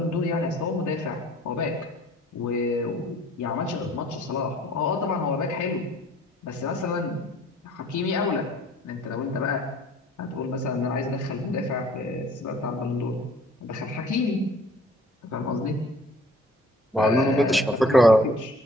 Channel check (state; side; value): normal; both; correlation 0.53